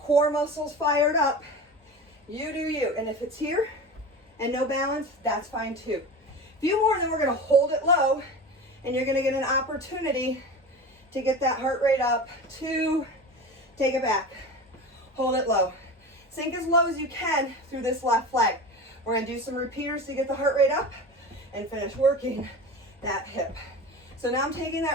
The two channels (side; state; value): both; normal; correlation 0.31